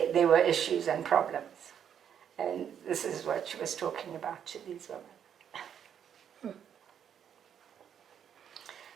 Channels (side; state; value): left; quieter; 8.7 dB